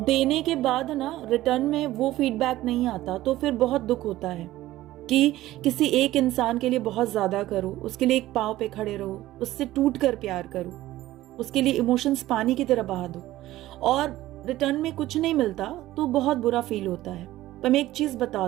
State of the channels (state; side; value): quieter; left; 15.7 dB